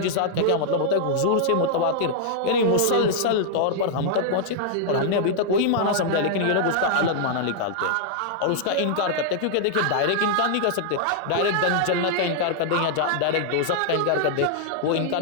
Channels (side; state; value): both; different; correlation -0.01